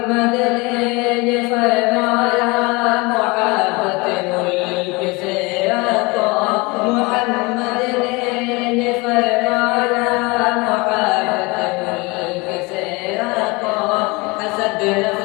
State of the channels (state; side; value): quieter; right; 25.6 dB